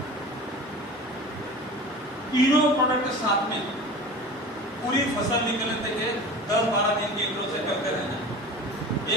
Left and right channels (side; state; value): both; normal; correlation 0.36